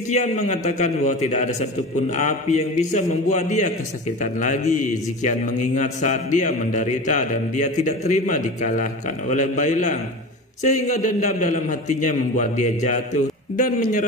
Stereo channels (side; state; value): both; normal; correlation 0.30